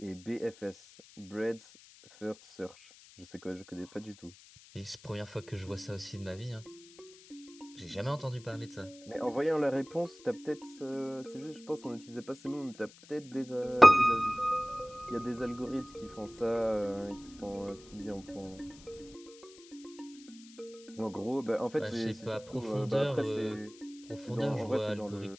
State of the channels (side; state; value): left; noise; hiss, 21 dB below the sound